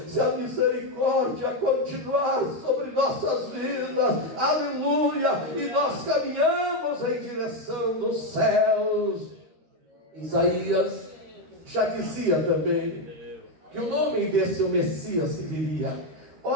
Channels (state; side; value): late; left; 13 ms